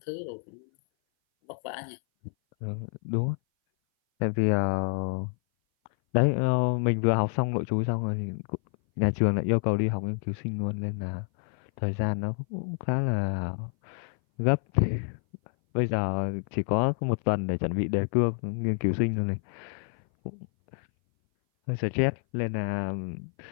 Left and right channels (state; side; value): silent; right; 57 dB below the other